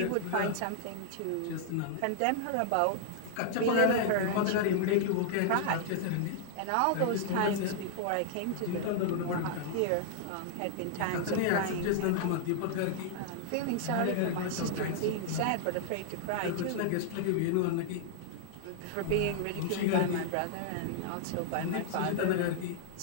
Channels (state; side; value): different; both; correlation -0.01